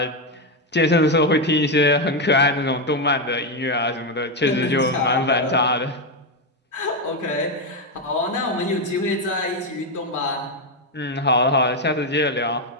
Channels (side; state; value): both; normal; correlation 0.06